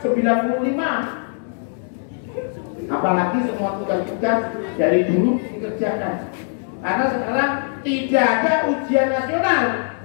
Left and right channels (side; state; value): right; silent; 65 dB below the other